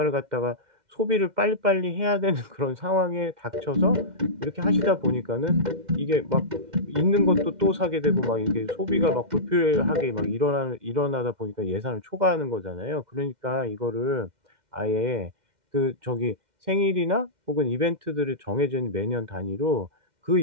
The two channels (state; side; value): late; left; 2.1 ms